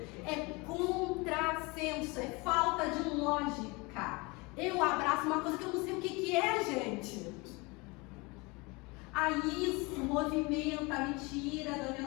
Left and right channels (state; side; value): quieter; right; 26.4 dB